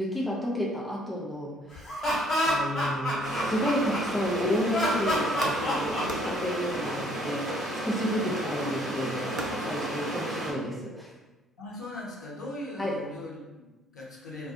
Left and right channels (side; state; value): both; normal; correlation 0.62